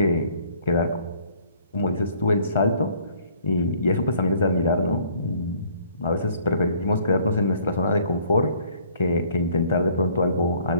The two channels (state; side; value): inverted; both; correlation -0.59